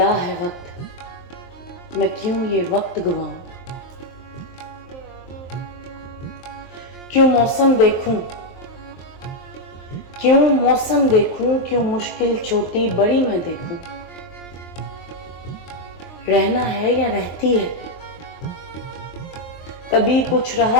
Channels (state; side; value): late; right; 23 ms